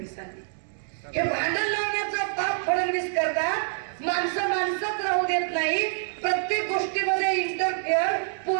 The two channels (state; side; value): silent; left; digital silence